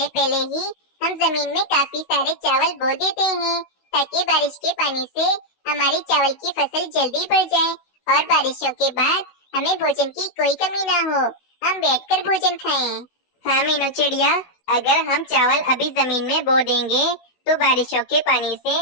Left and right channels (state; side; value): late; right; 16 ms